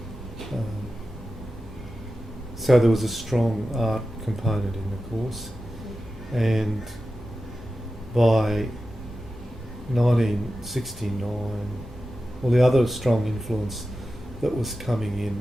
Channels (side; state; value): both; normal; correlation 0.93